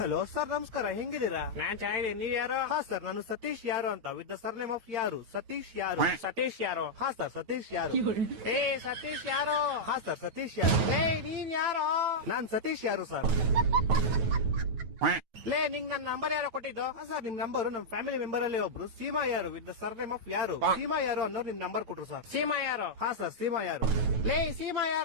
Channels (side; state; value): left; late; 9.2 ms